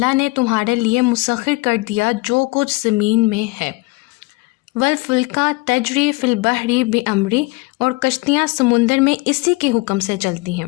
نے تمہارے لیے مسخر کر دیا جو کچھ زمین میں ہے. والفلک تجری فی البحر بامری, اور کشتیاں سمندر میں اسی کے حکم سے چلتی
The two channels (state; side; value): quieter; right; 24.0 dB